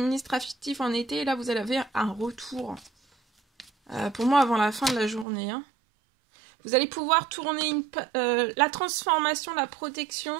en été et là vous avez un retour. Pour moi avant la fin de la journée. Hein. Vous allez pouvoir tourner la transformation, la protection.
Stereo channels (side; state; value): left; drops out; at 5.2 s